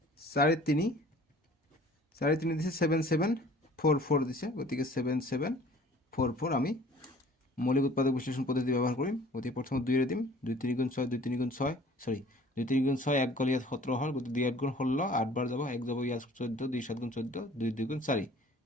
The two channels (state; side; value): normal; both; correlation 0.50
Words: 4 3 4 3 দিছে 7 7 4 4 দিছে গতিকে 7 7 4 4 আমি মৌলিক উৎপাদক বিশ্লেষণ পদ্ধতি ব্যবহার কৰিম গতিকে প্ৰথমে 2 এর দিম 2 3 গুণ 6 2 3 গুণ 6 সরি 2 3 গুণ 6 1 গল ইয়াত 17 হল গতিকে 2 8 গুণ 16 8 বার যাব 1 যাব ইয়াত 14 2 7 গুণ 14 2 2 গুণ 4